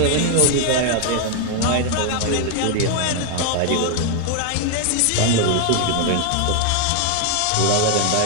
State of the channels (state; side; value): different; both; correlation 0.00